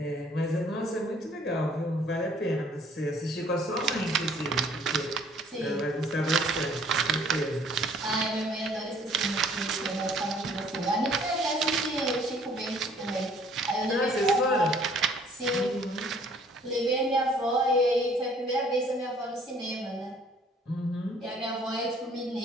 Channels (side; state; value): both; normal; correlation 0.58